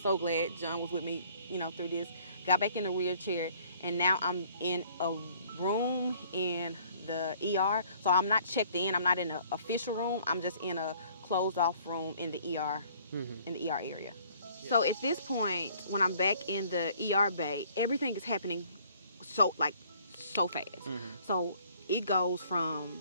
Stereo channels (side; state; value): both; inverted; correlation -0.58